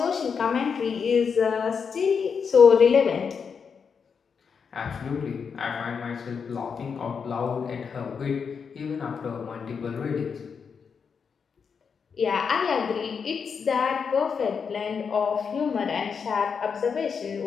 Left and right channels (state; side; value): quieter; right; 6.1 dB